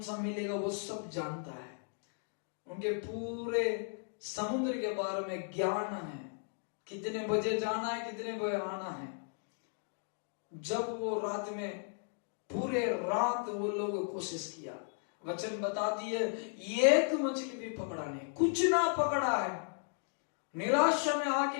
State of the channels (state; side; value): silent; right; 54 dB below the other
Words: सा मिलेगा, वो सब जानता है। उनके पूरे समुद्र के बारे में ज्ञान है, कितने बजे जाना है, कितने बजे आना है। जब वो रात में पूरे रात वो लोग कोशिश किया, वचन बताती है एक मछली भी पकड़ा नहीं, कुछ ना पकड़ा है। निराशा में